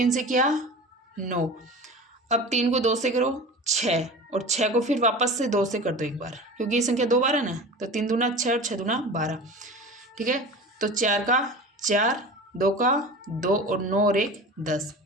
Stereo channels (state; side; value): normal; both; correlation 0.34